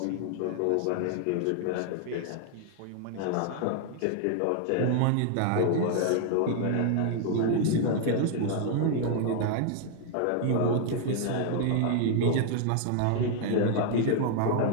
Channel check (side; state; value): both; different; correlation 0.00